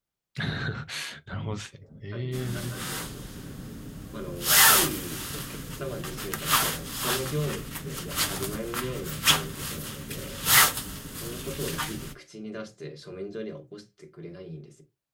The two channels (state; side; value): identical; both; correlation 1.00